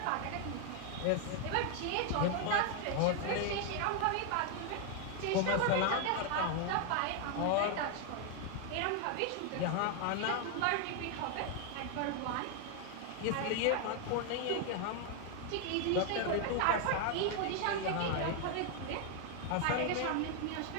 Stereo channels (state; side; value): different; both; correlation 0.01